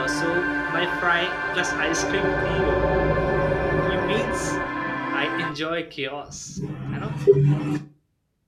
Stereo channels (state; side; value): identical; both; correlation 1.00